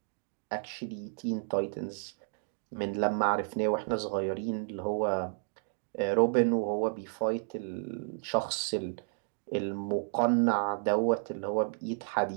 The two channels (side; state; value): left; silent; digital silence